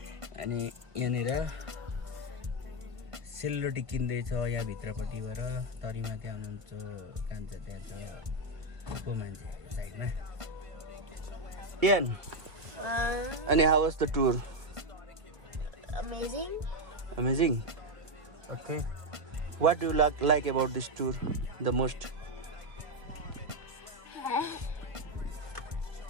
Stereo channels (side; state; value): left; late; 1.5 ms